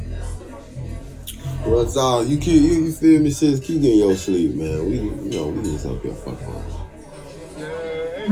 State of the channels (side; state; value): both; identical; correlation 1.00